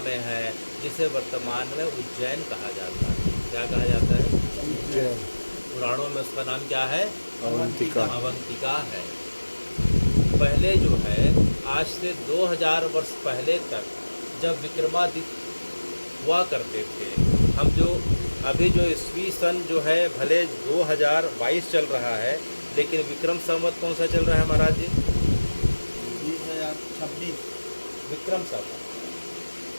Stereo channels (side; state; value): both; inverted; correlation -1.00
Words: है, जिसे वर्तमान में उज्जैन कहा जाता है। क्या कहा जाता है? उज्जैन। पुराणों में उसका नाम क्या है? अवंतिका। अवंतिका है। पहले जो है आज से 2000 वर्ष पहले तक जब विक्रमादित्य हुआ करते थे, हम जो अभी जो ईस्वी सन जो है भले 2022 चल रहा है, लेकिन विक्रम संवत कौन सा चल रहा है महाराज जी? 2026 विक्रम संवत